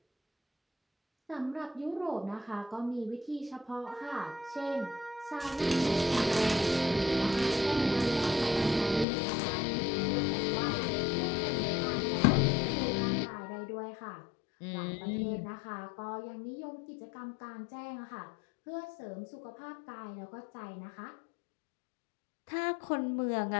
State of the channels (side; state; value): right; drops out; at 9.1 s